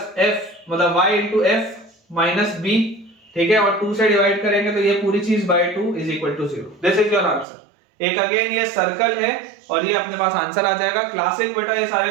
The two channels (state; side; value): drops out; left; at 7.5 s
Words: एफ मतलब y into f minus b, ठीक है, और 2 से डिवाइड करेंगे तो ये पूरी चीज by 2 is equal to 0। This is your answer. एक अगेन ये सर्कल है और ये अपने पास आंसर आ जाएगा। क्लासिक बेटा ये सारे